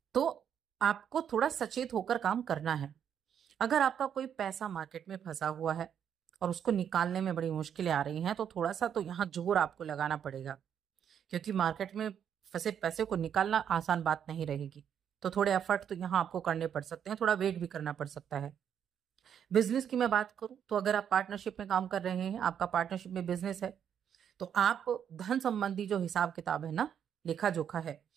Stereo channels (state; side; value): quieter; left; 8.6 dB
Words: तो आपको थोड़ा सचेत होकर काम करना है। अगर आपका कोई पैसा मार्केट में फंसा हुआ है और उसको निकालने में बड़ी मुश्किलें आ रही हैं, तो थोड़ा सा तो यहाँ जोर आपको लगाना पड़ेगा, क्योंकि मार्केट में फंसे पैसे को निकालना आसान बात नहीं रहेगी। तो थोड़े एफर्ट तो यहाँ आपको करने पड़ सकते हैं, थोड़ा वेट भी करना पड़ सकता है। बिजनेस की मैं बात करूं तो अगर आप पार्टनरशिप में काम कर रहे हैं, आपका पार्टनरशिप में बिजनेस है, तो आप धन संबंधी जो हिसाब किताब है ना, लेखा जोखा है,